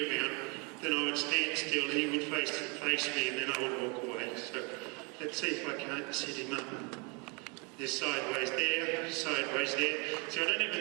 Then I would stand still, he would face me, and then I would walk away. So let's see if I can't set him up. There's sideways there, sideways there. So I don't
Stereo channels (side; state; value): left; quieter; 31.9 dB